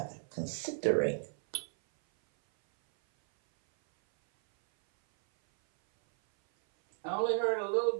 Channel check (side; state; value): left; silent; 56 dB below the other